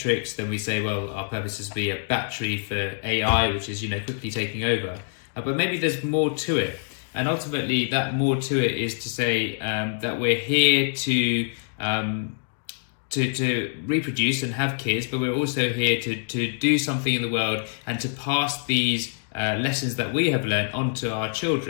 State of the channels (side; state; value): right; silent; digital silence